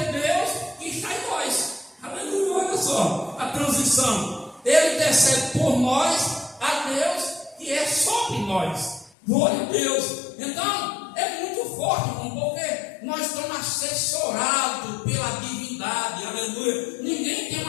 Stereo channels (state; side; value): drops out; right; at 9.1 s